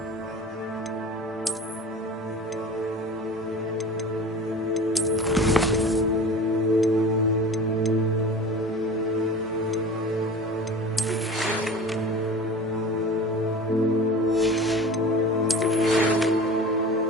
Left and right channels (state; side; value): normal; both; correlation 0.37